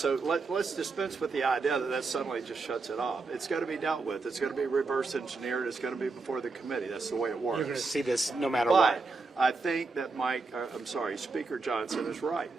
let's dispense with the idea that suddenly just shuts it off. It's going to be dealt with. It's going to be reverse engineered. It's going to be before the committee. That's the way it works. You're going to see this no matter but what. I think that Speaker Johnson is right.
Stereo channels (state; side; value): quieter; left; 4.0 dB